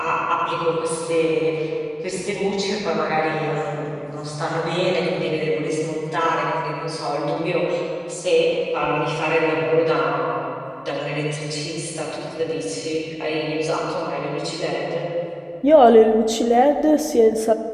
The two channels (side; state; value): both; identical; correlation 1.00